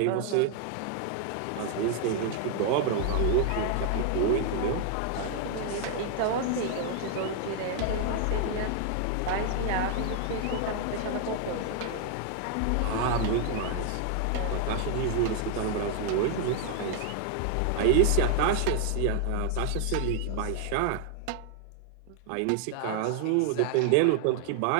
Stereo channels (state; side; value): different; both; correlation 0.00